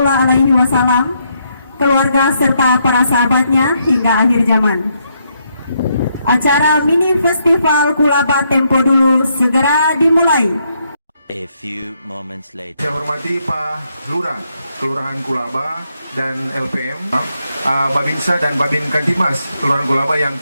Alaihi Wasallam, keluarga serta para sahabatnya hingga akhir zaman. Acara mini festival Kulaba Tempo Dulu segera dimulai. A few moments later. Saya hormati Pak Lurah, Kelurahan Kulaba dan LPM, Babinsa dan Babin Kantimas, Kelurahan Kulaba yang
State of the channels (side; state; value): both; inverted; correlation -0.76